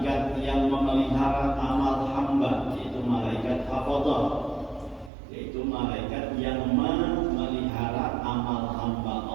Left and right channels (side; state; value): left; drops out; at 5.1 s